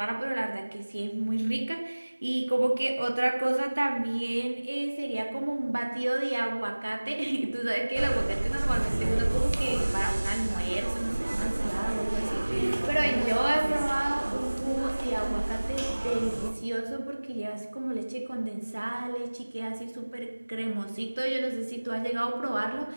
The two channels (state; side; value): inverted; both; correlation -1.00